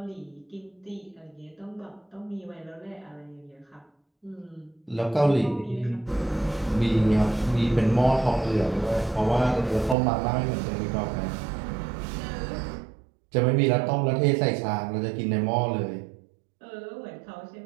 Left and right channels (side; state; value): left; drops out; at 10.0 s